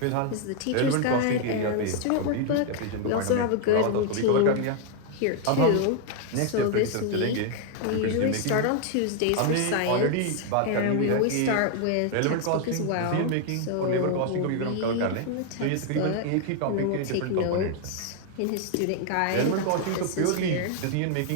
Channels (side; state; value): both; different; correlation 0.00